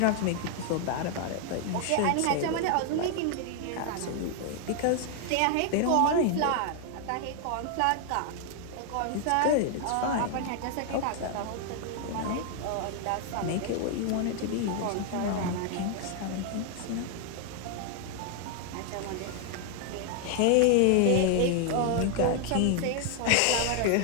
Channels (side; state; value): both; different; correlation 0.00